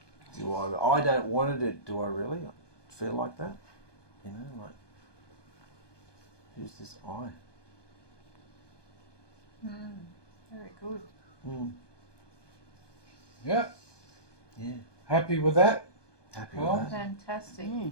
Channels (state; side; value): late; right; 1.2 ms